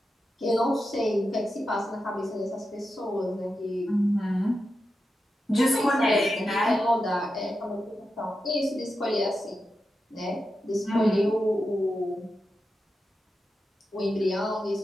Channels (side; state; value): both; normal; correlation 0.89